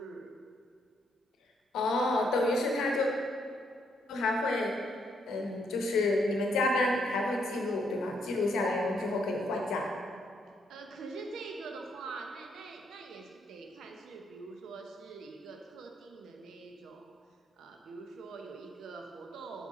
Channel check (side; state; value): both; normal; correlation 0.74